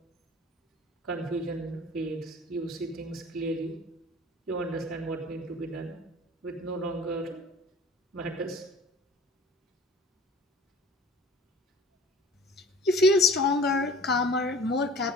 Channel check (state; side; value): normal; both; correlation 0.44